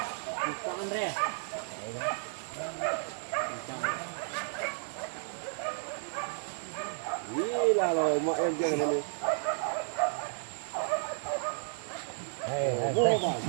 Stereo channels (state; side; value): silent; left; digital silence